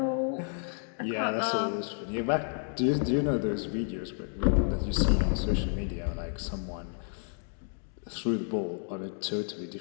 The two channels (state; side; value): silent; right; 57 dB below the other